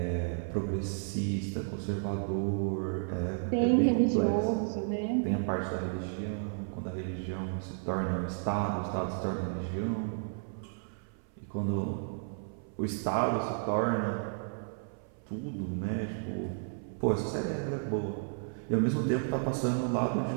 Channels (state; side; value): silent; left; 56 dB below the other